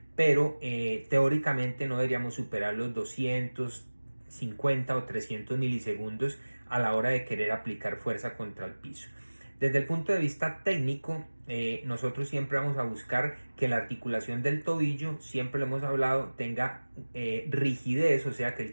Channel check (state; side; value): inverted; both; correlation -1.00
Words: pero teóricamente no deberíamos superar los 250 o 300 milisegundos a la hora de querer aplicar fuerza contra el piso. Desde el punto de vista técnico, nosotros siempre vamos a buscar que la articulación del tobillo, siempre lo hemos hablado, tenga rigidez, o sea que